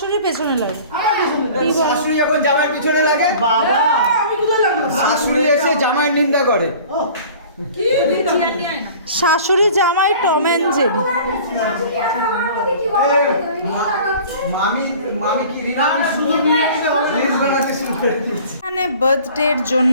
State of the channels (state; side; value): inverted; both; correlation -0.45